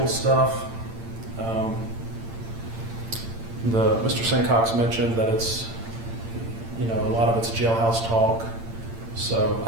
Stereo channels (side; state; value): left; late; 8.8 ms